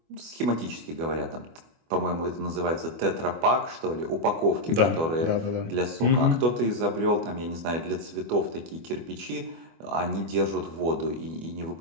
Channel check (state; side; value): late; left; 25 ms